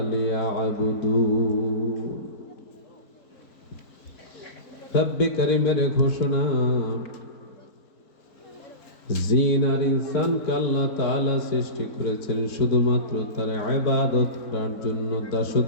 লিয়াবুদুন। রব্বে করিমের ঘোষণা, জিন আর ইনসানকে আল্লাহ তাআলা সৃষ্টি করেছেন শুধুমাত্র তার ইবাদত করার জন্য,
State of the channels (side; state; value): right; late; 4.5 ms